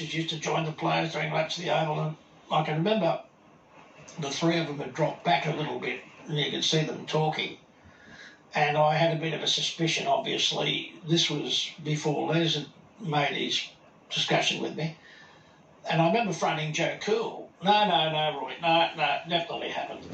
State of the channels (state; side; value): identical; both; correlation 1.00